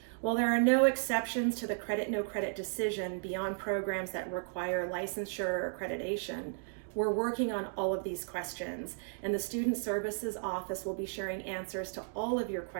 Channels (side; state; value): left; silent; digital silence